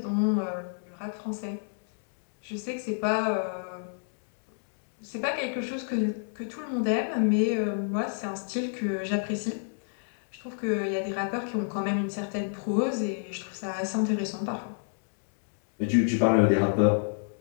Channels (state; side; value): silent; right; digital silence